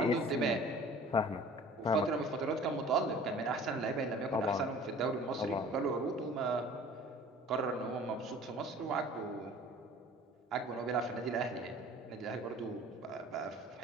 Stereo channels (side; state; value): both; normal; correlation 0.46